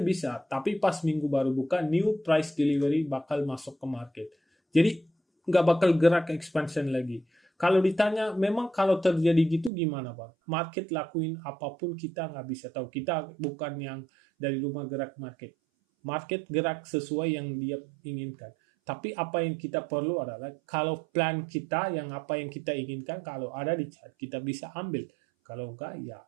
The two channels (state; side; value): drops out; left; at 9.7 s